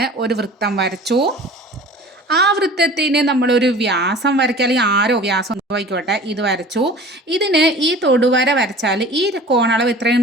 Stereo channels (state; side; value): normal; both; correlation 0.42